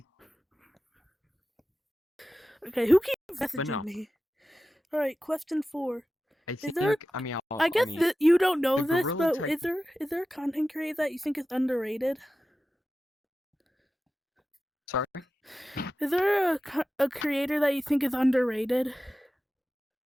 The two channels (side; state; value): both; normal; correlation 0.94